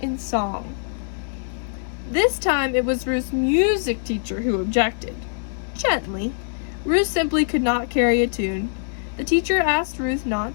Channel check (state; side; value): silent; right; digital silence